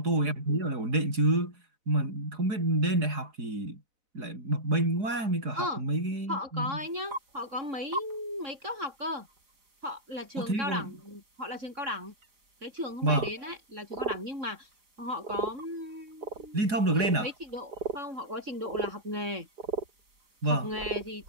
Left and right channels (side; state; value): left; late; 4.8 ms